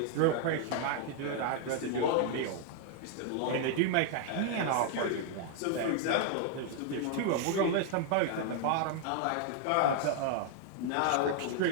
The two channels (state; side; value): different; both; correlation 0.00